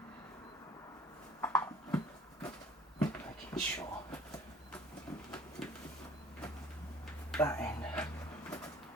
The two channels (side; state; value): both; normal; correlation 0.52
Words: Making sure that end